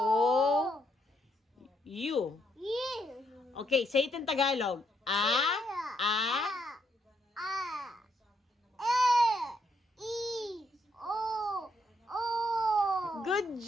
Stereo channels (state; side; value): normal; both; correlation 0.75